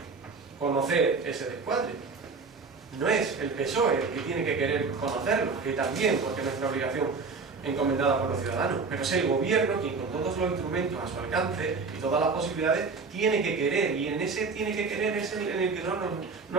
conocer ese descuadre. No es el PSOE el que tiene que querer conocerlo, que también, porque es nuestra obligación encomendada por los ciudadanos, pero es el gobierno quien con todos los instrumentos a su alcance y todas las posibilidades tiene que querer, y en ese tiene que querer es en el que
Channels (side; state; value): left; quieter; 4.5 dB